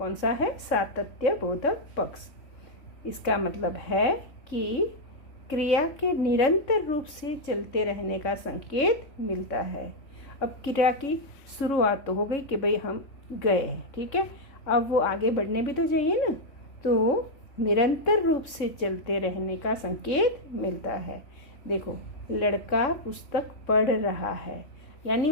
सा है? सातत्य बोधक पक्ष। इसका मतलब है कि क्रिया के निरंतर रूप से चलते रहने का संकेत मिलता है। अब क्रिया की शुरुआत तो हो गई कि भाई हम गए, ठीक है, अब वो आगे बढ़ने भी तो चाहिए ना, तो निरंतर रूप से चलते रहने का संकेत मिलता है। देखो, लड़का पुस्तक पढ़ रहा है, यानी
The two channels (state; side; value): late; right; 3.7 ms